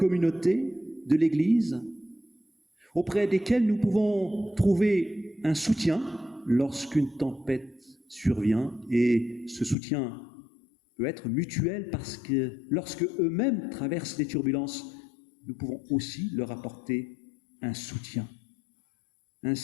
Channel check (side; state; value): right; drops out; at 9.8 s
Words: de l'Église, auprès desquels nous pouvons trouver un soutien lorsqu'une tempête survient, et ce soutien peut être mutuel parce que lorsque eux-mêmes traversent des turbulences, nous pouvons aussi leur apporter un soutien.